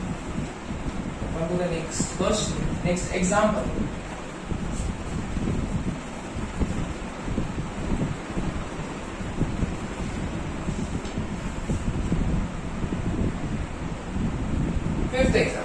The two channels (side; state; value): both; identical; correlation 1.00